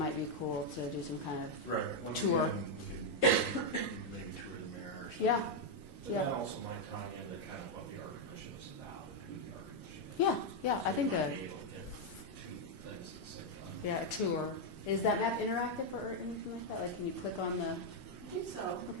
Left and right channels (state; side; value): late; right; 1.1 ms